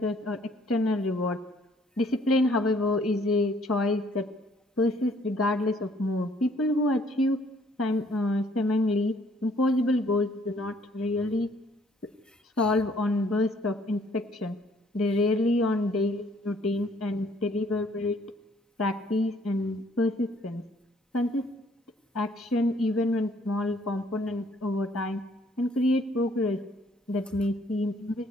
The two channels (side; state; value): both; normal; correlation 0.62